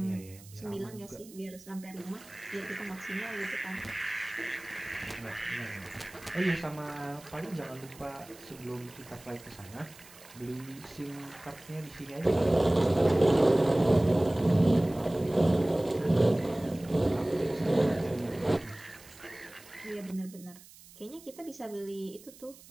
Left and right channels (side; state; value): right; noise; hiss, 21 dB below the sound